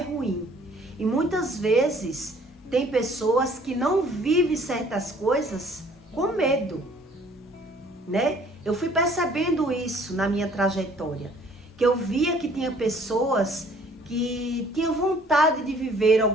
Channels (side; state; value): both; normal; correlation 0.57